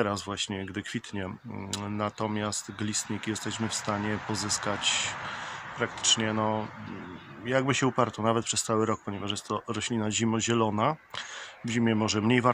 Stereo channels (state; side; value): identical; both; correlation 1.00